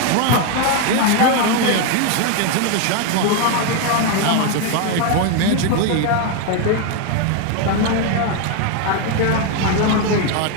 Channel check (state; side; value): different; both; correlation 0.01